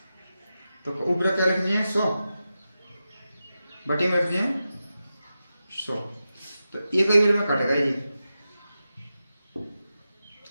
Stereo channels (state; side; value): inverted; both; correlation -0.91